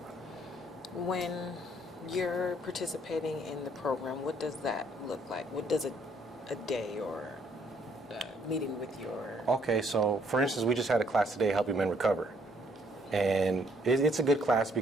When you're participating in the program, what does that look like? What does a day or meeting with your... okay, so for instance, we just had a class today, Helping Men Recover. And it's a good class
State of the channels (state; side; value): normal; both; correlation 0.66